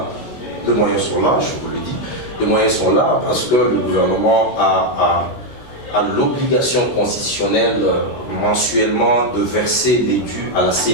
Les moyens sont là, je vous le dis. Les moyens sont là parce que le gouvernement a l'obligation constitutionnelle mensuellement de verser les dus à la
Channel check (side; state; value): right; late; 16 ms